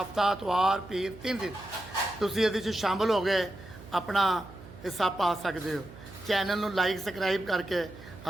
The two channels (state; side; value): noise; right; hum, 17 dB below the sound